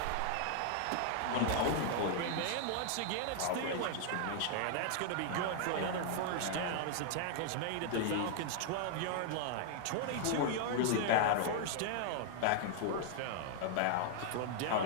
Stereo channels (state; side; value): different; both; correlation 0.00